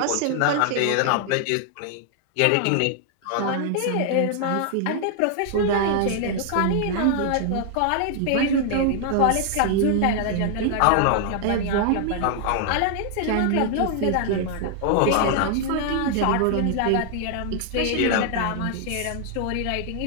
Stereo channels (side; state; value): both; different; correlation 0.00